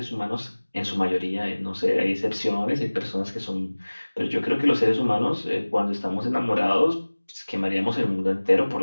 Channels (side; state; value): both; inverted; correlation -1.00